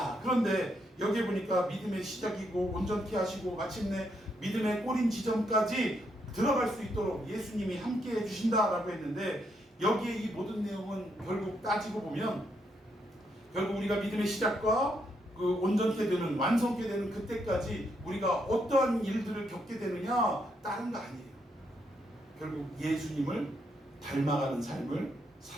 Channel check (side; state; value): both; normal; correlation 0.77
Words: 그런데 여기 보니까 믿음의 시작이고 온전케 하시고 마침내 믿음의 꼬린 지점까지 들어갈 수 있도록 예수님이 함께 해주신다라고 했는데, 여기에 이 모든 내용은 결국 따지고 보면 결국 우리가 믿음의 시작과 그 온전케 되는, 완성케 되는 그때까지 우리가 어떠한 일들을 겪게 되느냐, 다른 거 아니에요. 결국 예수님을 닮아가는 삶을